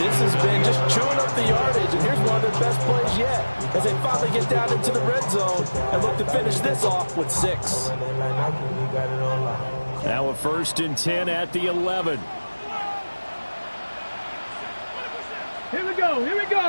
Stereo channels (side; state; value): both; inverted; correlation -1.00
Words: has been, just chewing up the yardage, and here's one of their best plays yet as they finally get down into the red zone and look to finish this off with 6. Now a 1st and 10 at the 11. Here we go, here we